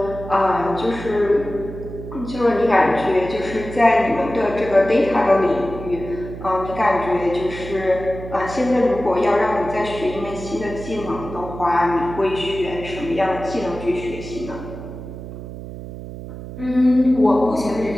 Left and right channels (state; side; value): noise; right; hum, 11 dB below the sound